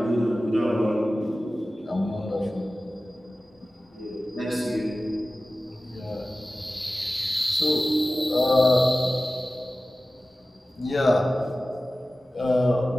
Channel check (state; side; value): normal; both; correlation 0.96